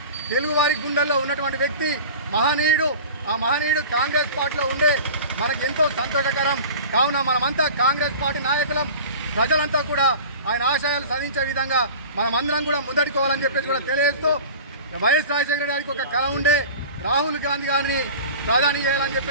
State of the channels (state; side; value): inverted; both; correlation -0.37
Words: తెలుగువారి గుండెల్లో ఉన్నటువంటి వ్యక్తి, మహనీయుడు. ఆ మహనీయుడు కాంగ్రెస్ పార్టీలో ఉండే మనకు ఎంతో సంతోషకరం. కావున మనమంతా కాంగ్రెస్ పార్టీ నాయకులం, ప్రజలంతా కూడా ఆయన ఆశయాలు సాధించే విధంగా మనమందరం కూడా ముందడుకోవాలని చెప్పేసి కూడా తెలియజేస్తూ, వైఎస్ రాజశేఖర గారికి ఒక కళ ఉండే, రాహుల్ గాంధీ గారిని ప్రధాని చేయాలని